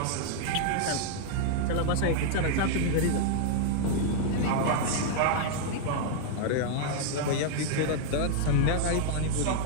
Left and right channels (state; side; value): different; both; correlation -0.01